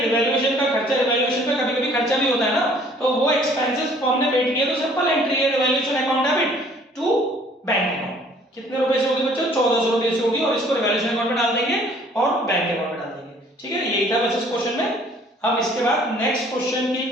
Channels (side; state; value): both; normal; correlation 0.57